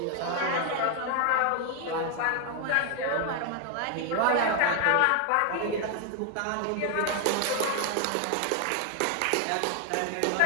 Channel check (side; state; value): both; different; correlation 0.00